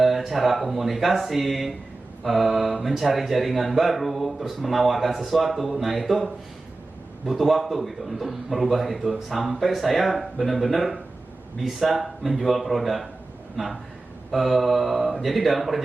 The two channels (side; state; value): left; quieter; 3.1 dB